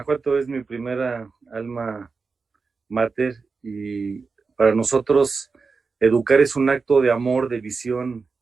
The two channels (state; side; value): quieter; left; 4.6 dB